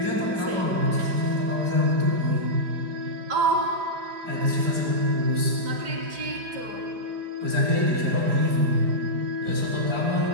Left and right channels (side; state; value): left; late; 4.9 ms